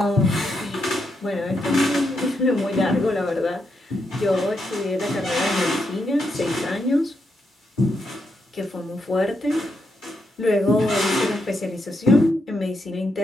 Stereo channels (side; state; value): both; normal; correlation 0.81